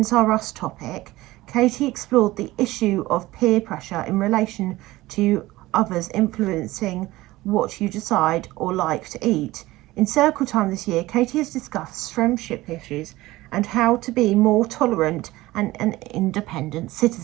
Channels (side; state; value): left; quieter; 18.2 dB